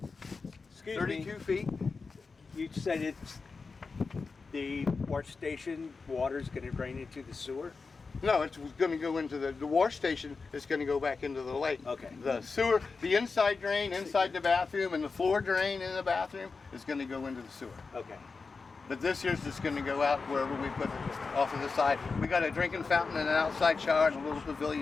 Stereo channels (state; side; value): quieter; right; 4.5 dB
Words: feet. You said it's the wash station water's going to drain into the sewer? No, it's going to go into the wash station. It's going to go back into the lake. Okay. The sewer, the inside drain inside the bathroom, and the floor drain in the bathroom is going to go into the sewer. Okay. But this year's just going to go out wherever we put it, off of the side. We got a drinking fountain and an outside shower and a little